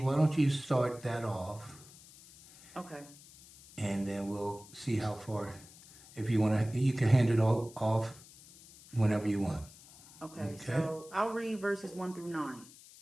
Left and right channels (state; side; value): noise; left; hiss, 21 dB below the sound